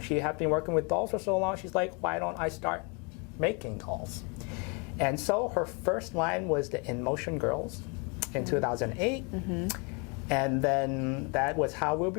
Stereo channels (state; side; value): quieter; right; 33.0 dB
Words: she had been working with dolls for so long, she's like, why don't I start making dolls? And so her first line was the In Motion Girls in 2008. And then that was how